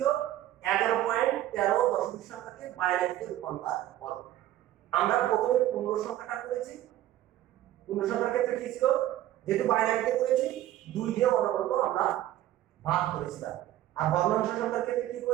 11.13 দশমিক সংখ্যাকে বাইনারিতে রূপান্তর করো। আমরা প্রথমে পূর্ণ সংখ্যাটা করেছি, পূর্ণ সংখ্যার ক্ষেত্রে কি ছিল? যেহেতু বাইনারিতে করেছি 2 দিয়ে অনবরত আমরা ভাগ করেছিলাম, আর ভগ্নাংশ সংখ্যার ক্ষেত্রে কি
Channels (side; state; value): left; quieter; 13.6 dB